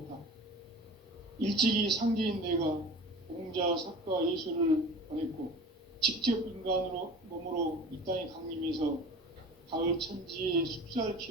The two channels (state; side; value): normal; both; correlation 0.39